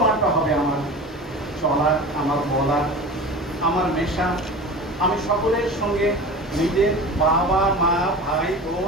হবে আমার চলার, আমার বলার, আমার মেশা। আমি সকলের সঙ্গে নিজের বাবা, মা, ভাই,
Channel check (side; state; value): both; normal; correlation 0.34